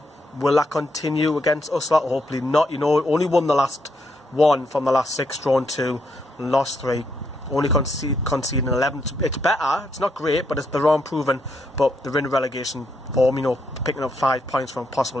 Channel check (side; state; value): both; normal; correlation 0.77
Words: Will that continue against us? Hopefully not. You know, only won the last 1 from the last 6, drawn 2, and lost 3. Only conceding 11. It's better. It's not great, but they're unproven. But they're in relegation form. You know, picking up 5 points from